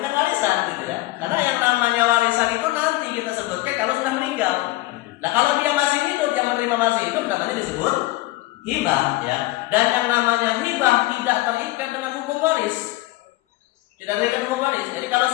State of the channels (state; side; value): quieter; right; 19.1 dB